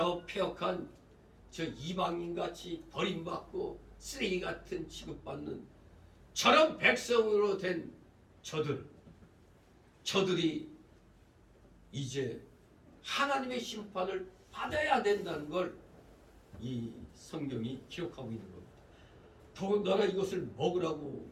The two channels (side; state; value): both; identical; correlation 1.00